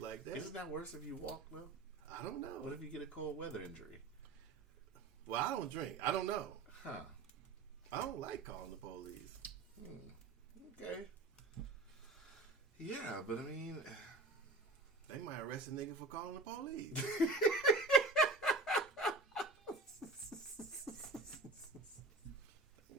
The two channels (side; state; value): left; quieter; 3.2 dB